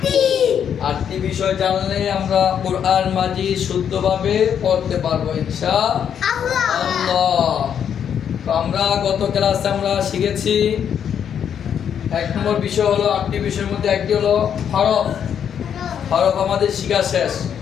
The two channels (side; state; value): right; quieter; 8.4 dB